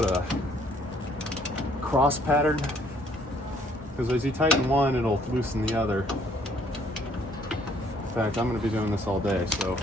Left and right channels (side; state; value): both; normal; correlation 0.63